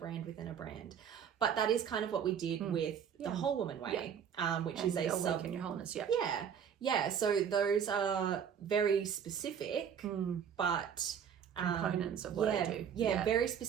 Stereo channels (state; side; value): quieter; left; 8.0 dB